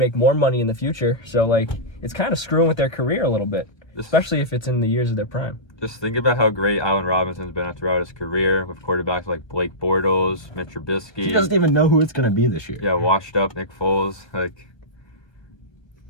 more money in the future. So, like, it's kind of screwing with their career a little bit, especially if it's in the years of their prime. Just think about how great Allen Robinson's been throughout his career with quarterbacks like Blake Bortles, Mitch Trubisky. He doesn't even know who it's going to be this year. Yeah, washed up Nick Foles. Like,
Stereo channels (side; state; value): right; late; 1.3 ms